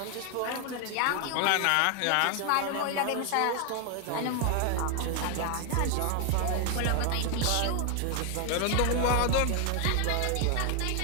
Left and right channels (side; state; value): both; different; correlation 0.00